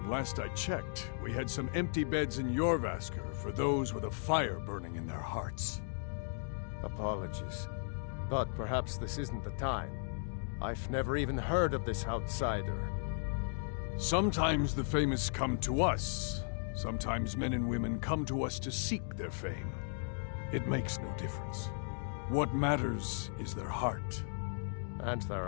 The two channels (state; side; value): silent; right; digital silence